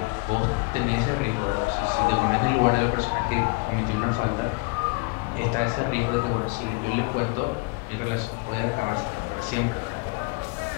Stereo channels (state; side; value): quieter; right; 27.5 dB